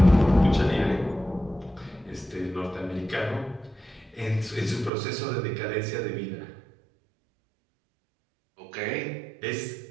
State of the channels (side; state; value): left; drops out; at 4.9 s